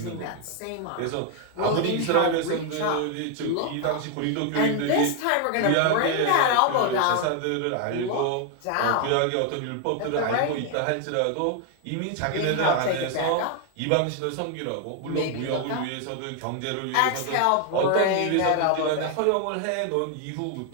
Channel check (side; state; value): both; different; correlation 0.00